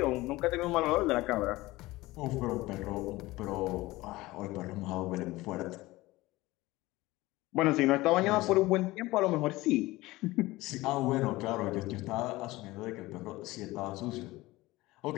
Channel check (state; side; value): quieter; right; 19.4 dB